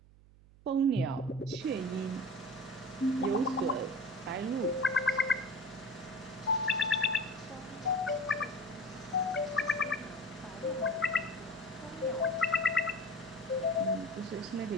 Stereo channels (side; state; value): right; noise; hum, 24 dB below the sound